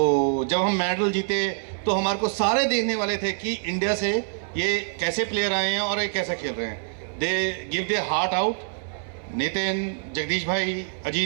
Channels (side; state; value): left; silent; 62 dB below the other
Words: जब हम मेडल जीते तो हमारे को सारे देखने वाले थे कि इंडिया से ये कैसे प्लेयर आए हैं और ये कैसे खेल रहे हैं। They give they heart out. Nitin, Jagdish भाई,